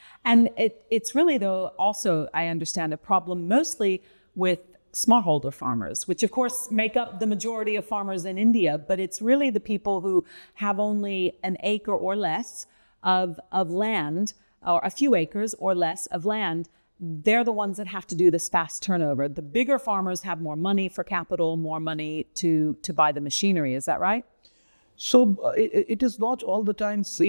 And it's really, though, also, I understand, a problem mostly with smallholder farmers, which of course make up the majority of farmers in India, but it's really the people who have only an acre or less of land, or a few acres or less of land. They're the ones that have to do this fast turnover. The bigger farmers have more money for capital, more money to buy the machinery. Is that right? So it is not all the time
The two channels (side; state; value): both; inverted; correlation -1.00